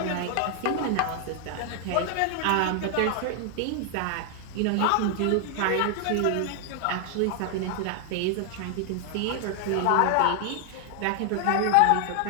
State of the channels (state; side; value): different; both; correlation 0.00